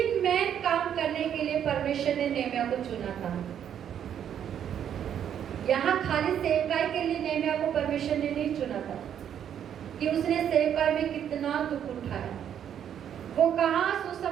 मेन काम करने के लिए परमेश्वर ने नेहमिया को चुना था। यहाँ खाली सेवकाई के लिए नेहमिया को परमेश्वर ने नहीं चुना था कि उसने सेवकाई में कितना दुख उठाया, वो कहाँ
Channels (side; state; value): left; quieter; 9.3 dB